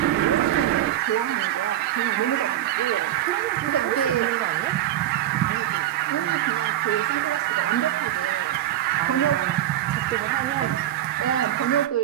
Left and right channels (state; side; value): quieter; left; 12.7 dB